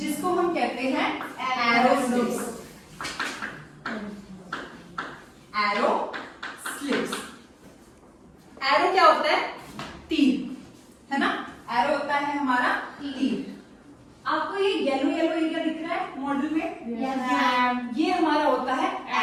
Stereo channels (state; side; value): identical; both; correlation 1.00